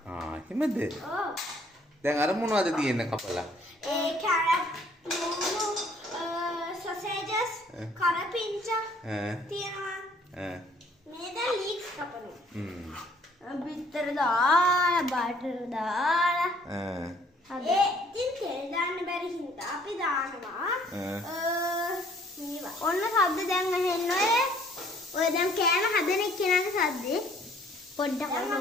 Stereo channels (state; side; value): normal; both; correlation 0.60